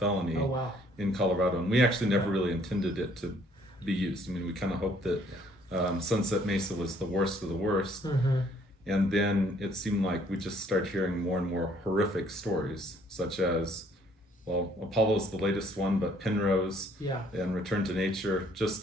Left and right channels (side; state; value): both; normal; correlation 0.62